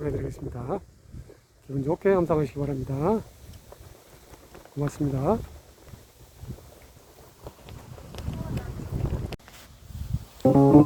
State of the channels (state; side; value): identical; both; correlation 1.00